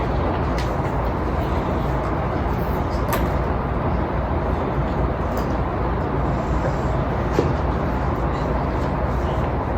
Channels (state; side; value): identical; both; correlation 1.00